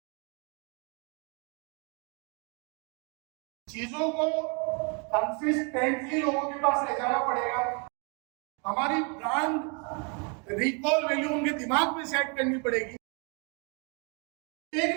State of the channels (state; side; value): quieter; left; 35.4 dB